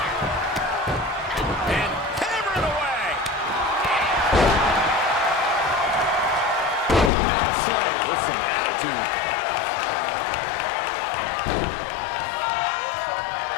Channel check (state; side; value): drops out; right; at 7.1 s